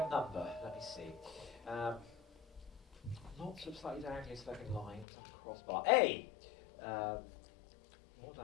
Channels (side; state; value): right; drops out; at 5.1 s